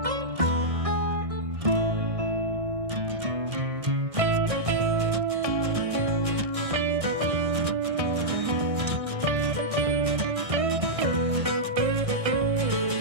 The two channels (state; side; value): late; left; 1.6 ms